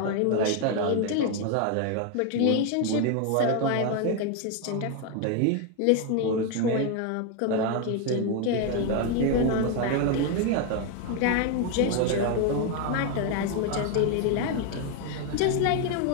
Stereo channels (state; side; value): different; both; correlation 0.01